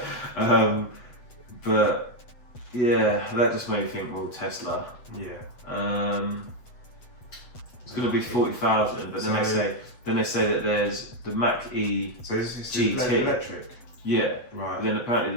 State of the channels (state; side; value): late; right; 8.1 ms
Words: But yeah, that just made me think, well, Tesla. Yeah. It's going to be 40,000, but then they say that there's the Mach-E So this is GT. electric. Yeah. Right. But then